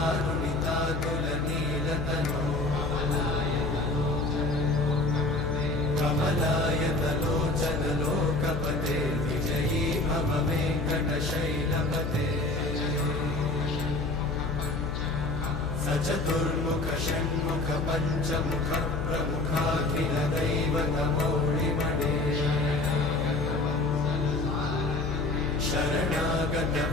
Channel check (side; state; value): left; noise; hum, 4 dB below the sound